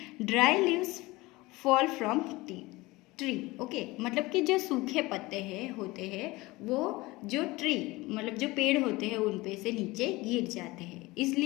Dry leaves fall from tree. Okay, मतलब कि जो सूखे पत्ते हैं होते हैं वो जो ट्री मतलब जो पेड़ होते हैं उन पे से नीचे गिर जाते हैं,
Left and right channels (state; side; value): quieter; right; 21.1 dB